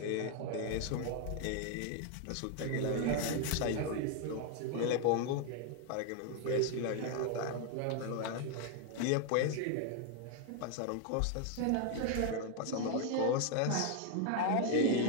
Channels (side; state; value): both; different; correlation 0.01